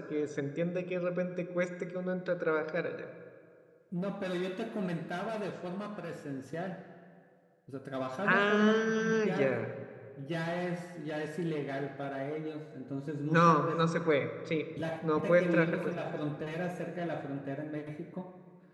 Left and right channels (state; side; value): identical; both; correlation 1.00